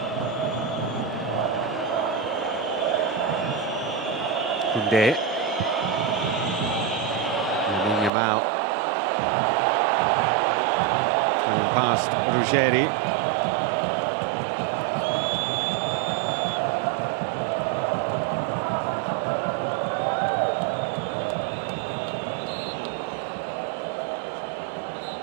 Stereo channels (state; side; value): drops out; left; at 8.1 s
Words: Koundé. Lamine Yamal. Coming past Ruggeri.